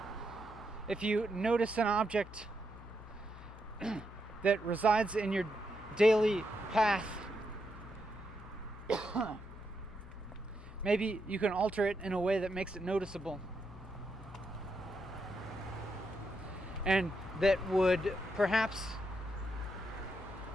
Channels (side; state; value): left; noise; hum, 16 dB below the sound